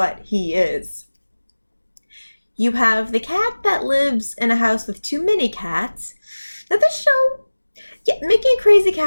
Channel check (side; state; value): both; inverted; correlation -1.00